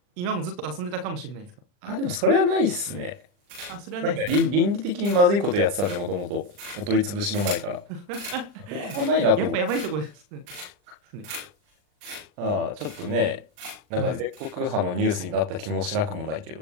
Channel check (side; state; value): left; late; 40 ms